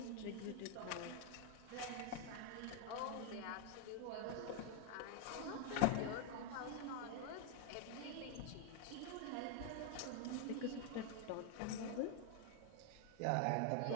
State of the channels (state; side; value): different; both; correlation 0.00